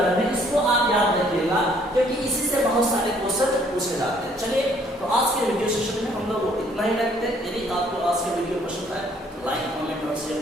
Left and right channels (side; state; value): both; normal; correlation 0.63